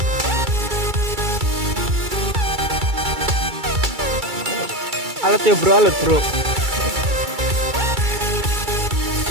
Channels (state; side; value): late; left; 2.3 ms